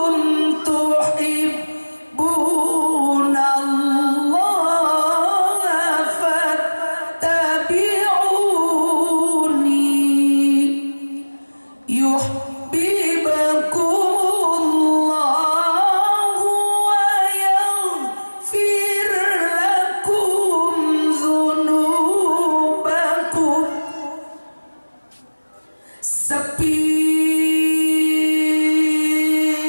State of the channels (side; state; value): both; inverted; correlation -1.00